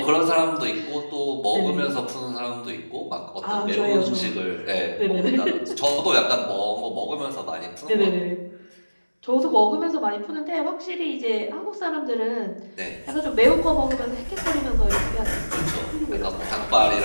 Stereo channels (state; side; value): inverted; both; correlation -1.00